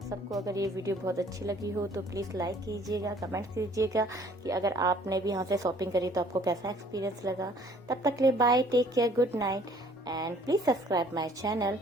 सबको अगर ये वीडियो बहुत अच्छी लगी हो तो प्लीज़ लाइक कीजिएगा, कमेंट कीजिएगा कि अगर आपने भी यहाँ से शॉपिंग करी तो आपको कैसा एक्सपीरियंस लगा। तब तक के लिए bye, take care, good night, and please subscribe my channel.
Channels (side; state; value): both; normal; correlation 0.57